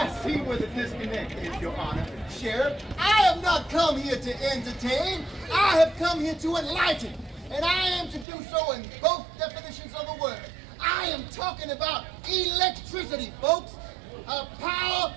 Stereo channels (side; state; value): left; drops out; at 8.2 s